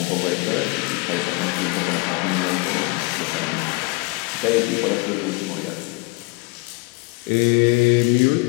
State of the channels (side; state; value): right; quieter; 26.2 dB